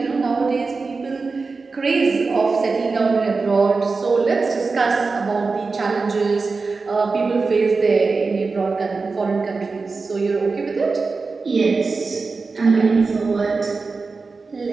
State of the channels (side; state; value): left; quieter; 4.2 dB